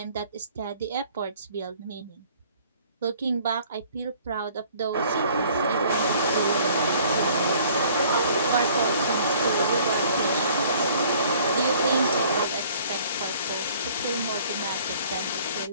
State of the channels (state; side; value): inverted; both; correlation -0.56